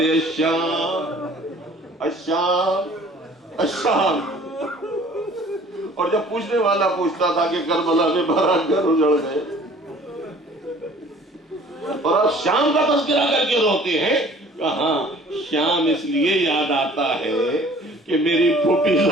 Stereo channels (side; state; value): both; normal; correlation 0.51